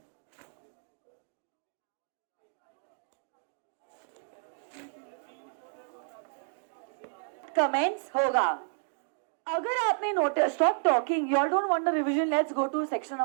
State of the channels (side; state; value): left; silent; digital silence